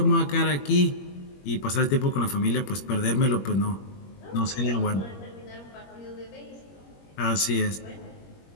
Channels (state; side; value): late; right; 21 ms